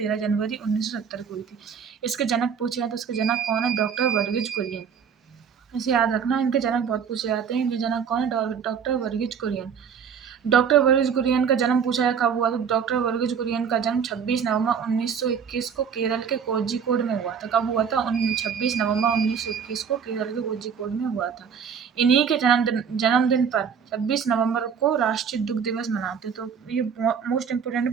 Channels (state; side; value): quieter; left; 7.0 dB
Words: जनवरी 1970 को हुई थी। इसके जनक पूछे हैं तो इसके जनक कौन है? डॉक्टर वर्गीज कुरियन। इसे याद रखना, इनके जनक बहुत पूछे जाते हैं। इनके जनक कौन है? डॉक्टर वर्गीज कुरियन। डॉक्टर वर्गीज कुरियन का जन्म पूछा है कब हुआ था। डॉक्टर वर्गीज कुरियन का जन्म 26 नवंबर 1921 को केरल के कोझिकोड में हुआ था। कब हुआ था? 26 नवंबर 1921 को केरल के कोझिकोड में हुआ था। इन्हीं के जन्मदिन पर 26 नवंबर को राष्ट्रीय दुग्ध दिवस मनाते हैं। तो ये मोस्ट